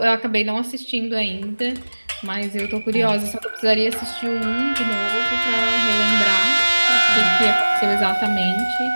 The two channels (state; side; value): inverted; both; correlation -1.00